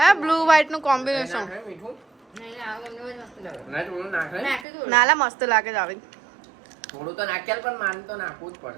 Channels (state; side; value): drops out; left; at 4.7 s